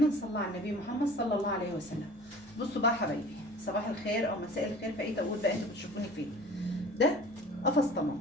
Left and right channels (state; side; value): noise; left; rumble, 29 dB below the sound